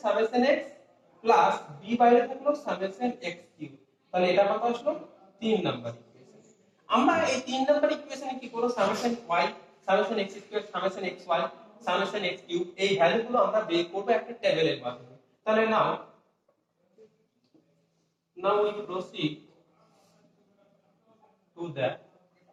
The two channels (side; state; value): both; identical; correlation 1.00